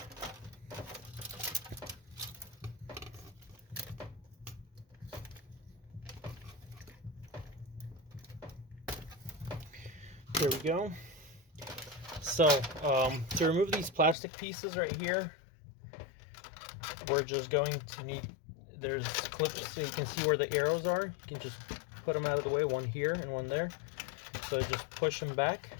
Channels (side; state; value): right; drops out; at 14.2 s